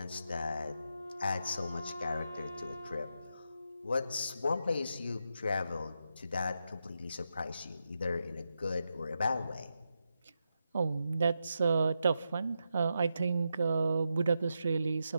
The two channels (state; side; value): inverted; both; correlation -0.86